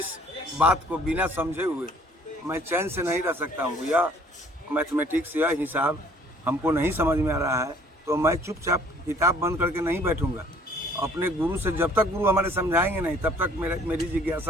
बात को बिना समझे हुए मैं चैन से नहीं रह सकता हूँ। या मैथमेटिक्स या हिसाब हमको नहीं समझ में आ रहा है तो मैं चुपचाप किताब बंद करके नहीं बैठूंगा। अपने गुरु से जब तक गुरु हमारे समझाएंगे नहीं तब तक मेरी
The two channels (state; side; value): normal; both; correlation 0.57